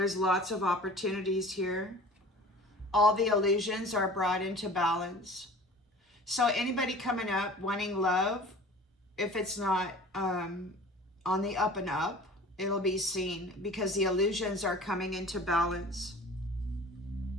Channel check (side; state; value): both; normal; correlation 0.43